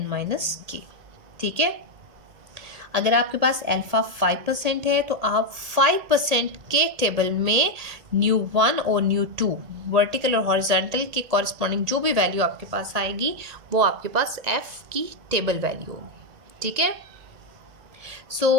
माइनस k. ठीक है? अगर आपके पास अल्फा 5% है तो आप 5% के टेबल में न्यू 1 और न्यू 2 वर्टिकल और हॉरिजॉन्टल के कॉरस्पॉन्डिंग जो भी वैल्यू आपके पास आएगी वो आपके पास एफ की टेबल वैल्यू होगी. ठीक है?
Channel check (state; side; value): late; left; 1.8 ms